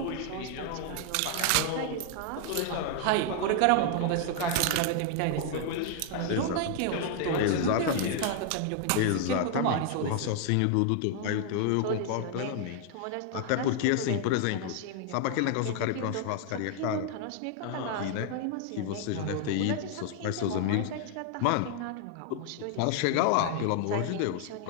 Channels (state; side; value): different; both; correlation 0.00